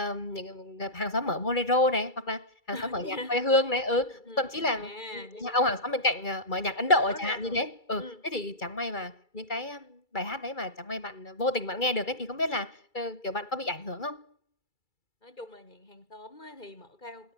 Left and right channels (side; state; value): right; late; 2.3 ms